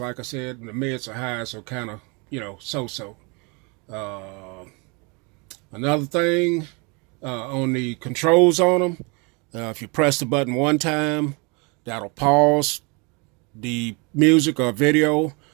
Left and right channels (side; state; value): left; quieter; 30.7 dB